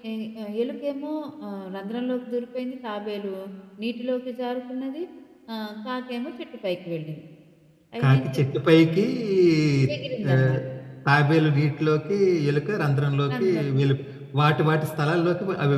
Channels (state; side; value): identical; both; correlation 1.00